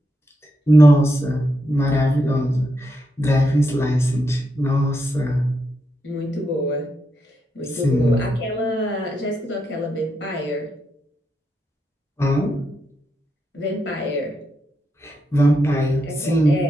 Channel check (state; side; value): normal; both; correlation 0.83